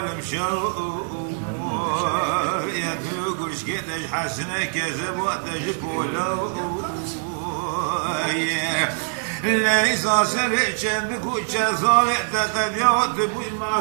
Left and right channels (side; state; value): left; silent; 63 dB below the other